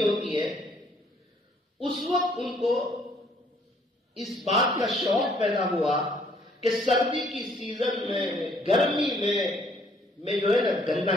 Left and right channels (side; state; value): both; normal; correlation 0.63